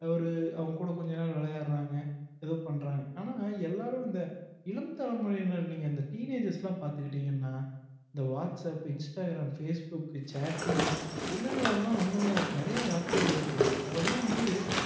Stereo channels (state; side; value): identical; both; correlation 1.00